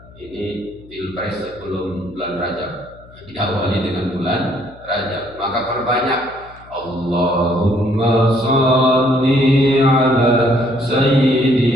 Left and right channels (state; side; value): noise; left; hum, 23 dB below the sound